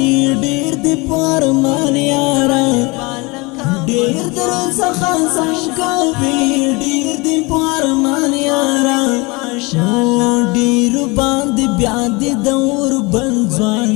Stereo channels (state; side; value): quieter; right; 26.2 dB